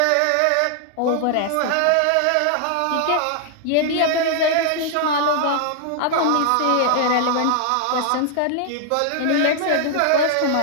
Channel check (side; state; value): both; different; correlation 0.00